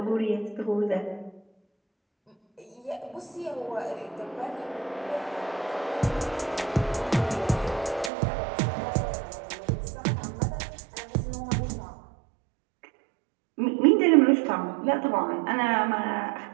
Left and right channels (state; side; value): drops out; left; at 8.1 s